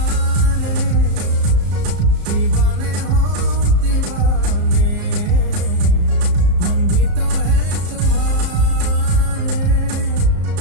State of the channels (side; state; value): left; late; 34 ms